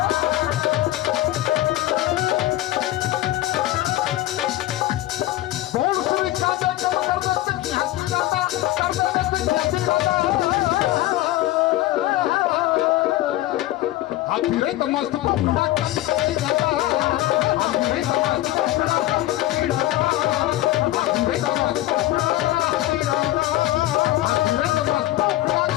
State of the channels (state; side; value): quieter; right; 15.8 dB